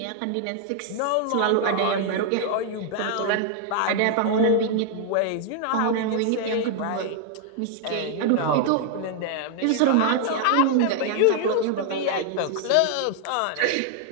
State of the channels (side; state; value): both; different; correlation 0.00